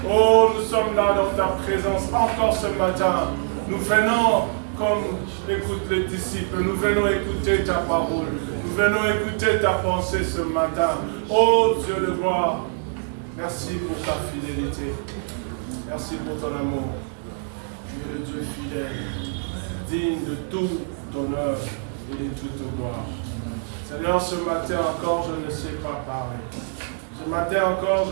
Oh, nous sommes là dans ta présence encore ce matin. Nous venons, comme écoutent les disciples, nous venons écouter ta parole. Nous venons écouter ta pensée ce matin. Oh Dieu de gloire, merci pour ta fidélité. Merci pour ton amour. Tu es le Dieu fidèle, digne de tout honneur et de toute gloire. Seigneur, ce matin encore, je ne sais pas parler. Ce matin encore,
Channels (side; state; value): left; silent; 63 dB below the other